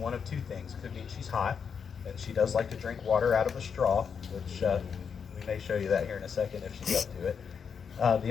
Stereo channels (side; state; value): right; quieter; 6.6 dB